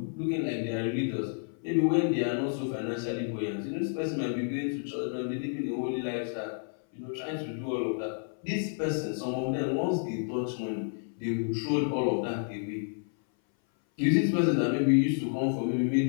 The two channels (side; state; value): right; silent; 58 dB below the other